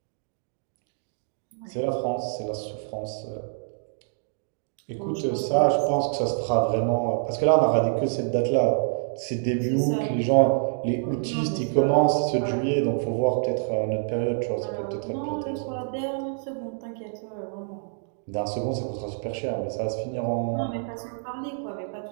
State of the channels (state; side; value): silent; left; digital silence